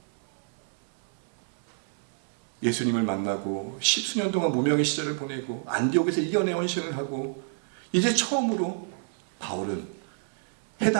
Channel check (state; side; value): silent; left; 59 dB below the other